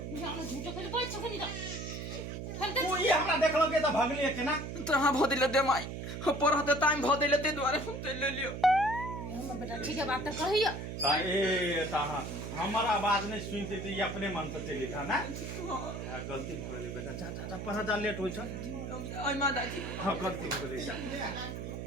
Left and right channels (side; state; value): right; noise; hum, 6 dB below the sound